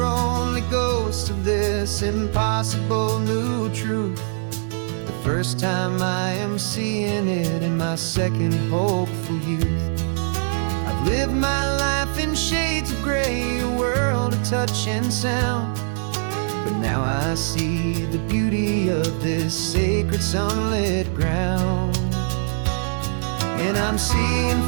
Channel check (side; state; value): left; silent; digital silence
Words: only ghosts of this impossible new truth. The first time I am seeing it in my second hopeful youth. I've lived my life in shades of gray, a world of touch and sound. But now I see the beauty of this sacred sunlit ground. And I'm seeing